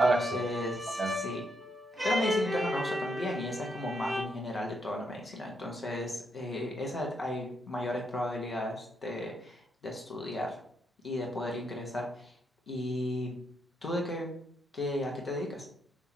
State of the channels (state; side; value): normal; both; correlation 0.78